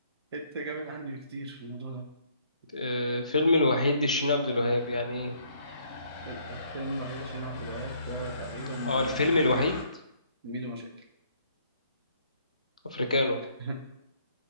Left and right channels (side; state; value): both; inverted; correlation -0.66